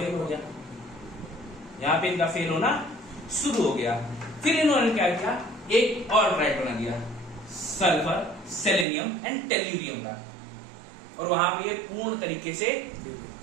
हो गया, यहां पे इनका फेल होना शुरू हो गया। फिर इन्होंने क्या किया, एक और ट्राइड बना दिया, सल्फर, सेलेनियम एंड टेल्यूरियम का, और वहां पे ये पूर्ण तरीके से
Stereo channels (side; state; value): left; drops out; at 8.8 s